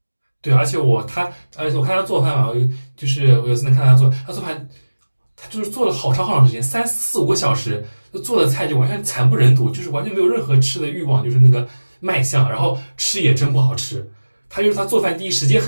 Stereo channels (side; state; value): both; inverted; correlation -1.00